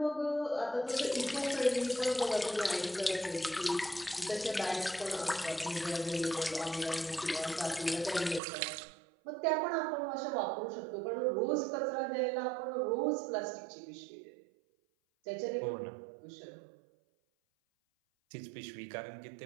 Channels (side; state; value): left; drops out; at 8.4 s